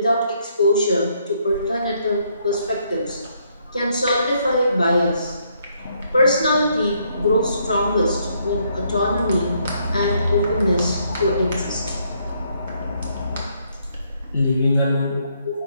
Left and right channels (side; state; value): both; inverted; correlation -0.71